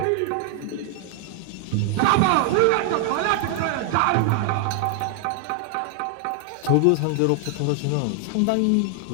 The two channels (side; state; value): both; different; correlation 0.00